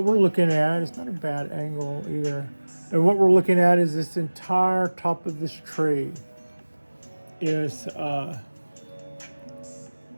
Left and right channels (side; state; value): both; inverted; correlation -1.00